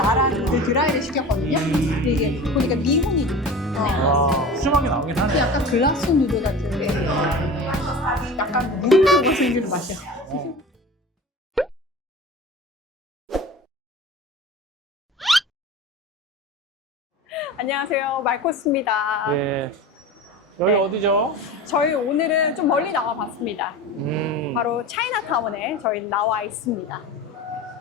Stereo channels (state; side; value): normal; both; correlation 0.34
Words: 누들 드라이를 시켰거든요. 근데 이게 보니까 미혼이 수박이 나오긴 하네. 약간 글라스 누들 같은 약간 무릎으로 생기는 맛이야. 안녕하세요, 말코스입니다. 예. 여기 네. 어디죠? 저희 오늘은 좀 멀리 나와 봤습니다. 바로 차이나타운에 저희 나와 있습니다.